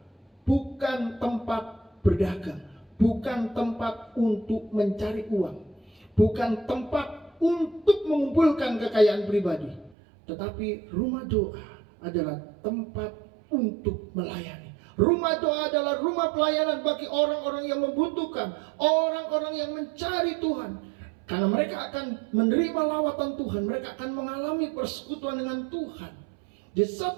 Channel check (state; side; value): drops out; left; at 10.0 s